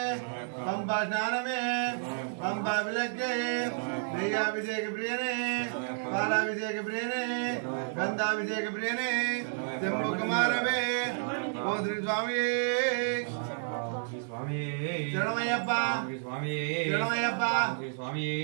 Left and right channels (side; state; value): left; silent; 57 dB below the other